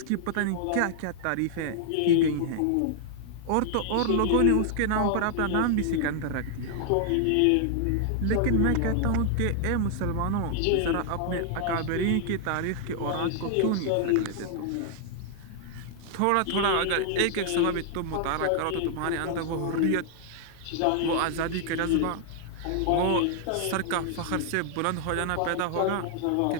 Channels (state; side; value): different; both; correlation 0.00